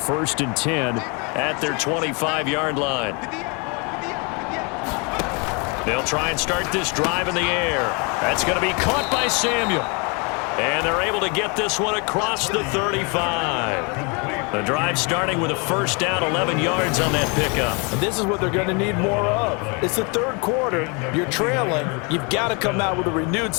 and 10 at their 25-yard line. They'll try and start this drive in the air. That's going to be caught by Samuel. And they're able to get this one across the 35. The drive starting with a first down, 11 yards on that pickup. And this is what they're going to need more of. It's the third quarter. You're trailing. You've got to come out with a renewed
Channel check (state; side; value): quieter; right; 32.4 dB